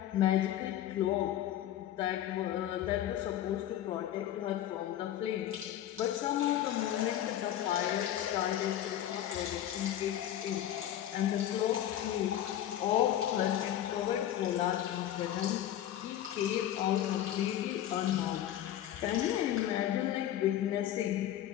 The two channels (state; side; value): quieter; right; 11.7 dB